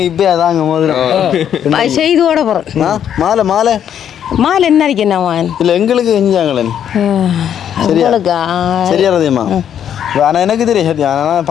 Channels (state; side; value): quieter; right; 9.4 dB